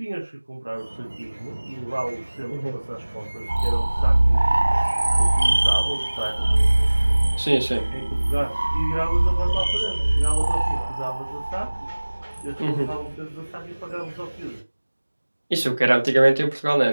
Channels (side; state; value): both; inverted; correlation -1.00